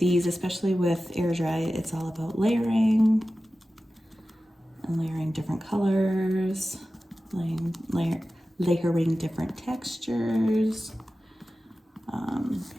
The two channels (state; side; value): normal; both; correlation 0.95